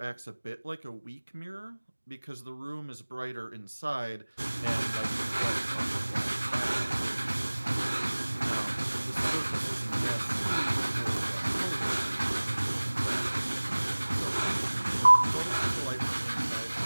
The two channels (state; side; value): inverted; both; correlation -1.00